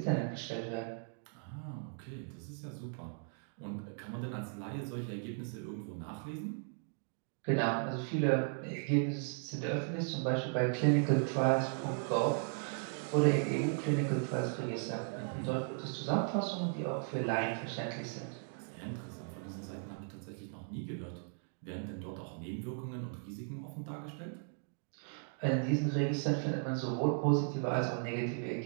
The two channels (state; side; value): silent; left; 53 dB below the other